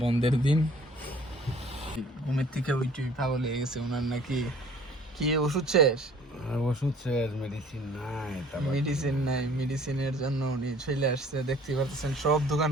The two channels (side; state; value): both; normal; correlation 0.53